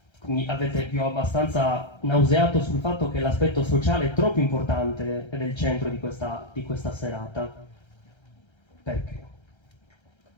vi ho abbastanza nauseato sul fatto che l'aspetto sociale è troppo importante ed è il centro di questa serata. Perché?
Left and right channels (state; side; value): late; right; 1.3 ms